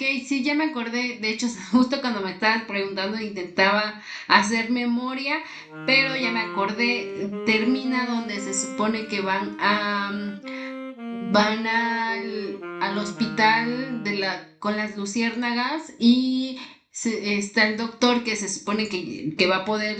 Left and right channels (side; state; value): both; identical; correlation 1.00